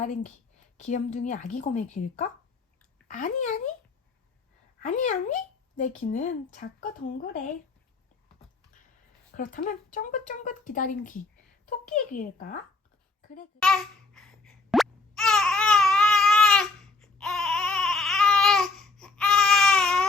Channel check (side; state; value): right; quieter; 3.8 dB